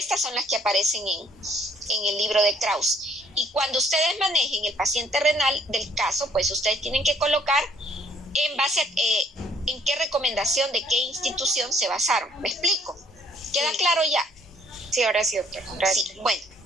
son las que aparecen en el libro de Krause. Y cuando ustedes manejen el paciente renal del caso, pues ustedes tienen que colocar en base a en qué recomendación de qué institución se basaron. ¿Me explico? ¿Queda claro ya? Sí, ahora sí, doctora. Gracias. Sí, bueno.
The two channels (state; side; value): normal; both; correlation 0.63